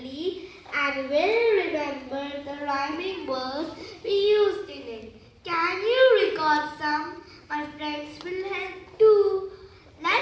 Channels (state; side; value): identical; both; correlation 1.00